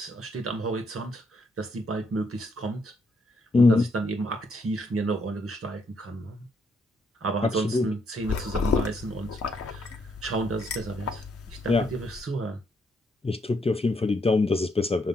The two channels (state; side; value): normal; both; correlation 0.75